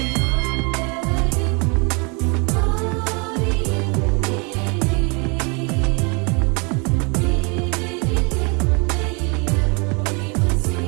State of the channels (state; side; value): quieter; left; 32.0 dB